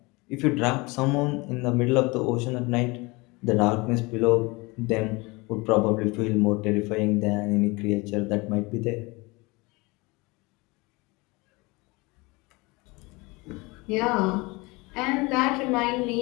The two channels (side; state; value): right; quieter; 24.9 dB